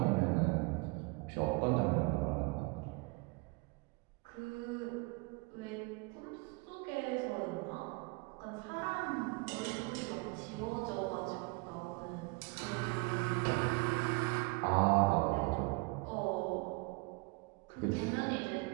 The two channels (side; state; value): left; quieter; 28.1 dB